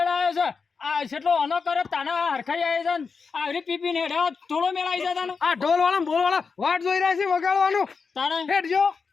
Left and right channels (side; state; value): right; quieter; 5.2 dB